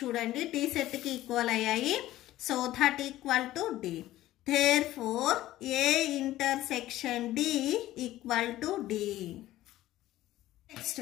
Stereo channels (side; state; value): right; quieter; 15.1 dB